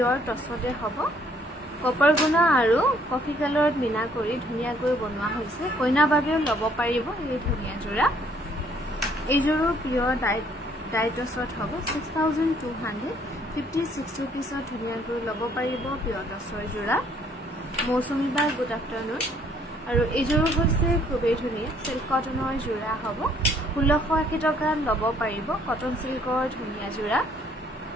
টছতে হ'ব কপাৰ গুণা আৰু কফি কালাৰত মিনা কৰি ধুনীয়াকৈ বনোৱা হৈছে কইনা বাবেও ল'ব পাৰিব এই ধুনীয়া যোৰা এইযোৰো পিয়ৰ ডাই টছত হ'ব 6256 रुपिसত ধুনীয়াকৈ ল'ব পাৰিব পিয়ৰ টছৰ যোৰা মৌচুমী বা গুড আফটাৰনুন আৰু এইযোৰ হৈছে খুবেই ধুনীয়া সিল্ক কটনৰ যোৰা হ'ব 1680 টকাত ল'ব পাৰিব কটন সিল্কৰ ধুনীয়া যোৰা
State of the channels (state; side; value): normal; both; correlation 0.63